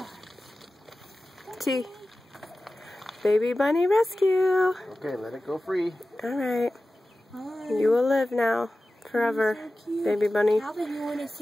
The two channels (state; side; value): normal; both; correlation 0.95